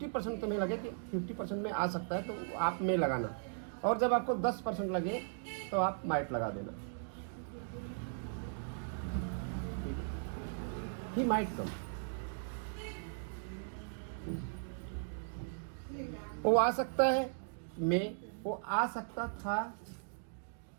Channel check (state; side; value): silent; left; digital silence